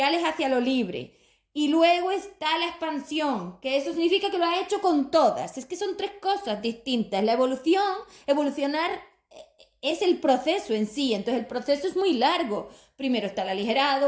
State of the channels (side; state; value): both; identical; correlation 1.00